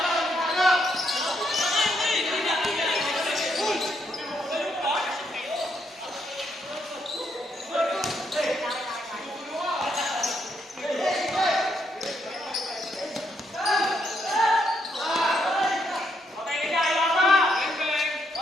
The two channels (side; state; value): both; normal; correlation 0.76